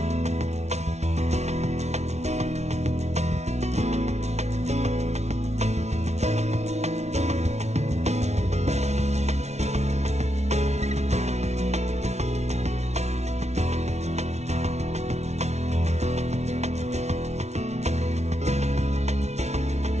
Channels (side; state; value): left; late; 0.32 ms